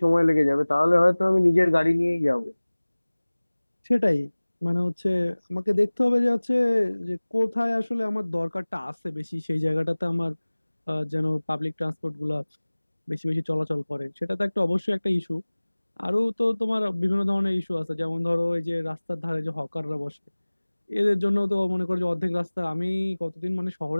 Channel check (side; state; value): both; inverted; correlation -1.00